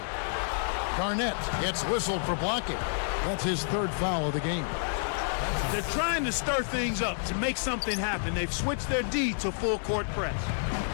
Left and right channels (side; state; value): right; silent; 58 dB below the other